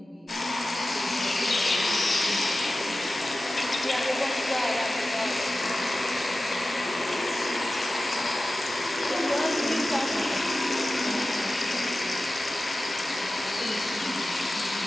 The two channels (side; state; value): both; normal; correlation 0.95